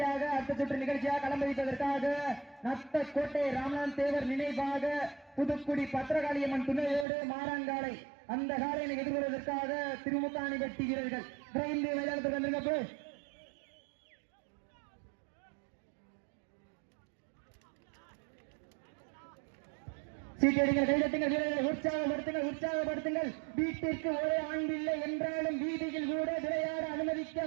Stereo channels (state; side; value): drops out; left; at 7.1 s